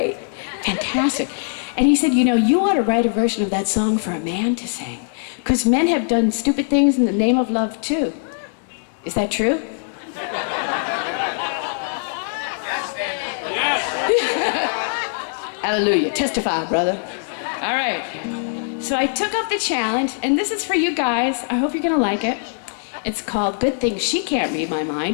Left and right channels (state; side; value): silent; right; digital silence